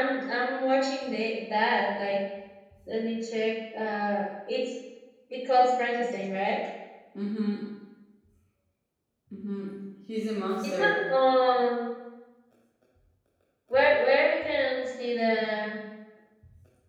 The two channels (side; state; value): both; identical; correlation 1.00